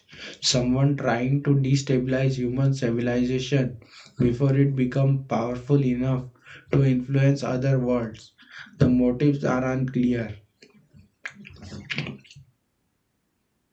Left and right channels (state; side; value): identical; both; correlation 1.00